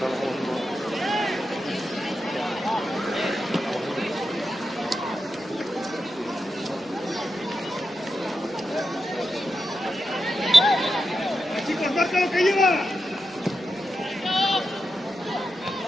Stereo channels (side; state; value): both; normal; correlation 0.88